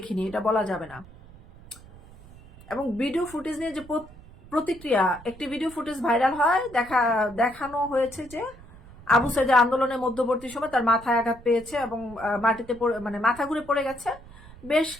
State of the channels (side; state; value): right; noise; rumble, 20 dB below the sound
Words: এটা বলা যাবে না। এবং ভিডিও ফুটেজ নিয়ে যে প্রতিক্রিয়া, একটি ভিডিও ফুটেজ ভাইরাল হয়, দেখানো হয়েছে যে আবু সাঈদের আন্দোলনের মধ্যবর্তী সময় তার মাথায় আঘাত পেয়েছে এবং মাটিতে মাথা ঘুরে পড়ে গেছে। বেশ